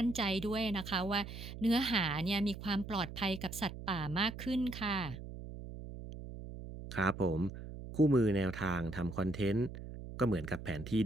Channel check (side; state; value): right; noise; hum, 11 dB below the sound